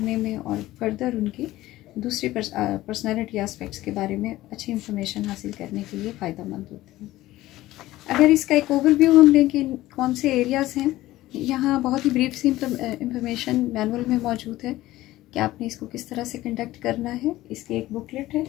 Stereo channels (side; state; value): right; quieter; 16.4 dB